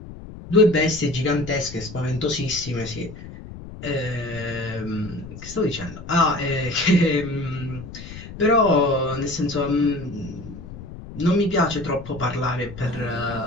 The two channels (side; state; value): left; noise; rumble, 13 dB below the sound